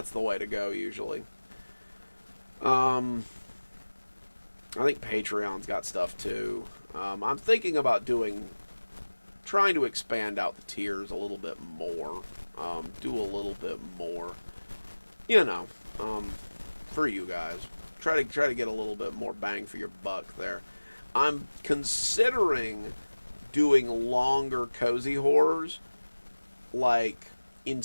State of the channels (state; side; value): inverted; both; correlation -1.00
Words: the way to go usually. I think Patreon's got stuff too. I'm thinking about trying to expand out the tiers a little bit more. Do a little bit more, you know, for you guys. Try to get a little bit more bang for your buck there. I'm considering doing longer cozy horrors, like,